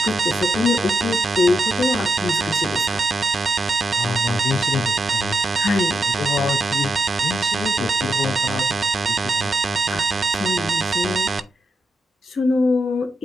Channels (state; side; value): normal; both; correlation 0.84